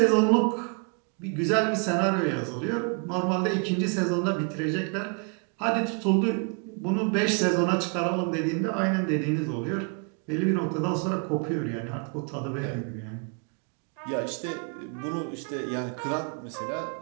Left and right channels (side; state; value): left; quieter; 38.0 dB